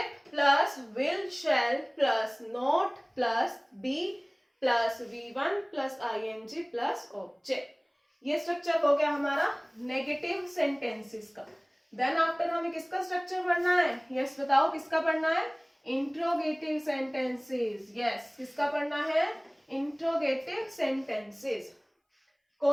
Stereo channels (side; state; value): both; identical; correlation 1.00